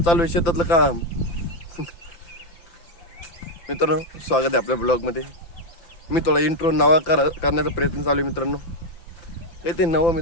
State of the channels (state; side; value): late; right; 5.8 ms